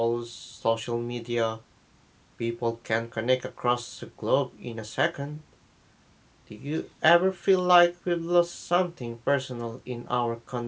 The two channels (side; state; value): both; identical; correlation 1.00